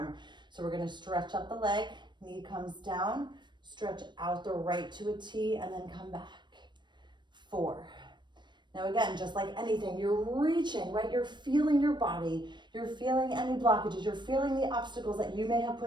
So we're gonna stretch up the leg, knee comes down, stretch out the right to a T, and then come back. 4. Now again, just like anything, you're reaching, right? You're feeling your body. You're feeling any blockages. You're feeling the obstacles that you may have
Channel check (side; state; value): left; late; 0.22 ms